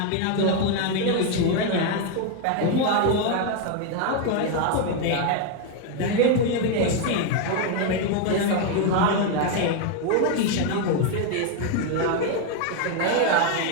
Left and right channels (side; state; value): both; different; correlation 0.01